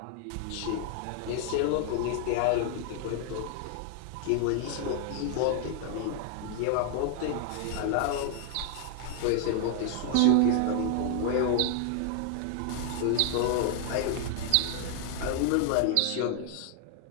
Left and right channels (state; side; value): different; both; correlation 0.00